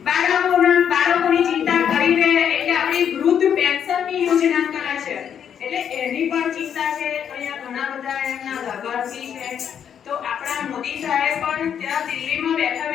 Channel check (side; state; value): right; quieter; 8.5 dB